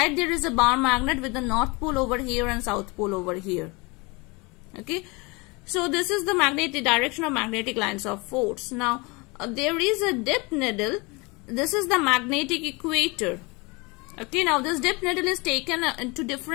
there is a bar magnet with the North Pole over here and South Pole over here. Okay, so this is the magnetic direction of magnetic lines of force. Now there is a dip needle. This is the magnetic equator. Okay, now this dip needle is taken to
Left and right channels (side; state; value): right; quieter; 26.9 dB